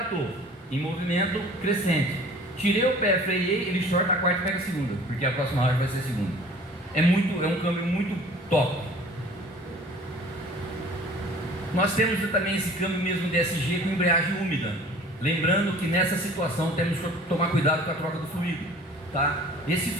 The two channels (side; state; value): both; normal; correlation 0.48